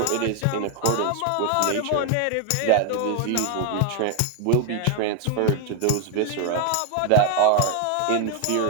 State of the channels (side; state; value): both; different; correlation 0.00